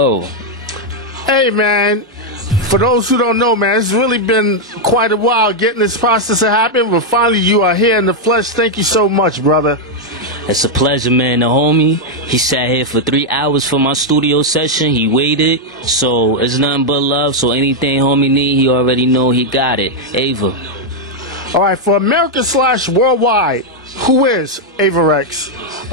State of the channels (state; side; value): normal; both; correlation 0.00